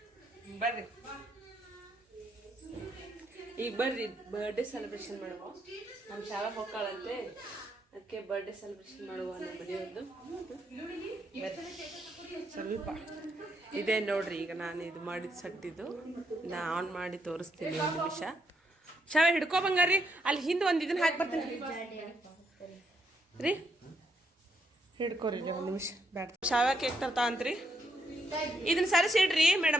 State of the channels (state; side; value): normal; both; correlation 0.76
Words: ಬರ್ರಿ, ಈಗ ಬರ್ರಿ ಬರ್ಡೇ ಸೆಲೆಬ್ರೇಷನ್ ಮಾಡುವ. ನಮ್ಮ ಶಾಲಾ ಹೋಗ್ಕಾಳಂತೆ, ಅದಕ್ಕೆ ಬರ್ಡೇ ಸೆಲೆಬ್ರೇಷನ್ ಮಾಡುವ ನಮ್ಮ ಮನೆಯವ್ರದ್ದು. ಸ್ವಲ್ಪ ಇದೇ ನೋಡ್ರಿ. ಈಗ ನಾನು ಇದು ಮಾಡಿದ ಸಟ್ಟಿದ್ದು ನಾ ಆನ್ ಮಾಡಿ ತೋರಿಸ್ತೀನಿ. ಒಂದು ನಿಮಿಷ. ಶಾವೆ ಹಿಡ್ಕೊ ಬಂಗಾರಿ. ಅಲ್ಲಿ ಹಿಂದೆ ಒಂದು ಇದನ್ನ ಹಾಕಿ ಬರ್ತೀನಿ ರೀ. ಹಿಡ್ಕೋರಿ ಒಂದು ನಿಮಿಷ. ಬ್ಯಾಡ, ಶಾವೆ ಕೇಕ್ ತರ್ತಾ ಅಂತ್ರಿ. ಇದನ್ನ ಸರಿಸಿಡ್ರಿ